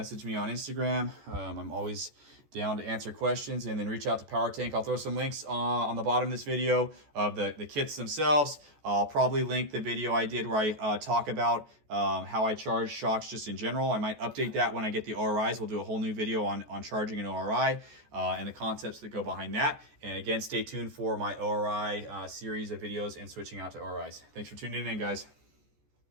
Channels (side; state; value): left; late; 14 ms